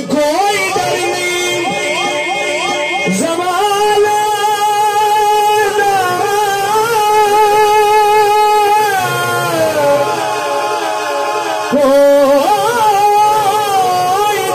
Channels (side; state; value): both; identical; correlation 1.00